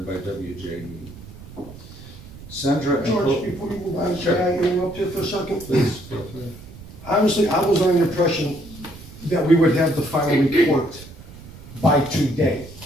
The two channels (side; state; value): right; noise; rumble, 17 dB below the sound